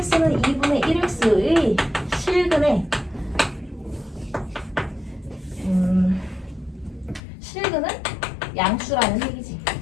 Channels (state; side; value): drops out; right; at 7.2 s